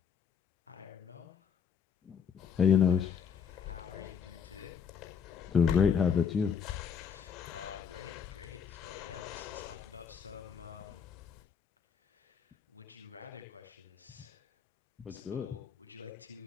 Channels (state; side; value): quieter; right; 7.1 dB